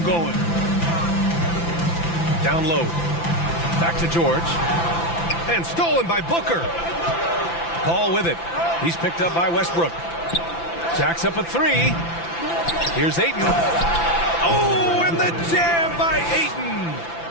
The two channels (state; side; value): late; right; 5.9 ms